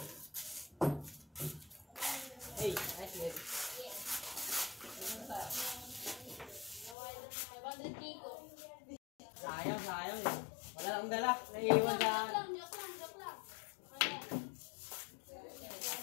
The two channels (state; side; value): drops out; right; at 7.0 s